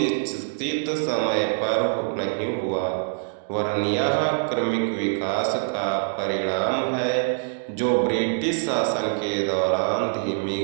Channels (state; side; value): silent; left; digital silence